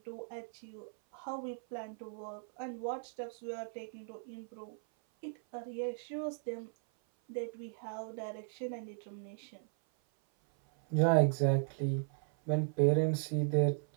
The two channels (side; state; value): left; silent; 53 dB below the other